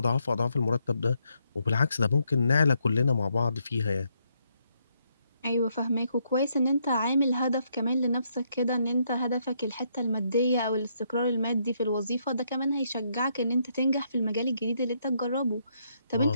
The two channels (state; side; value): inverted; both; correlation -0.75